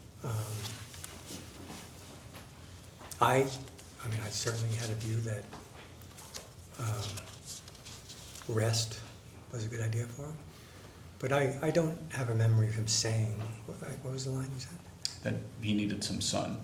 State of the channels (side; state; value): both; identical; correlation 1.00